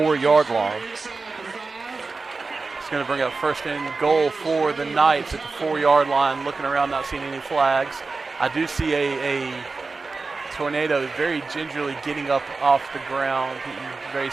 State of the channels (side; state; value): left; quieter; 4.0 dB